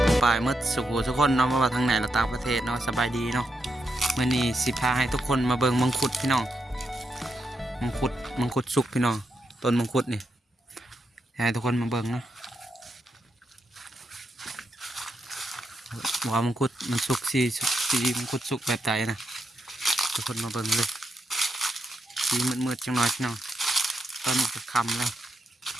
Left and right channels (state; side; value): normal; both; correlation 0.83